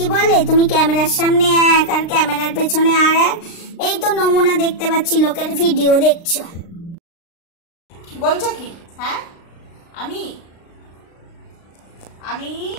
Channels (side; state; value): right; late; 36 ms